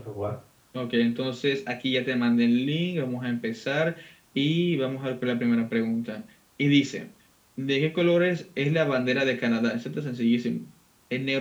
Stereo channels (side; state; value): both; identical; correlation 1.00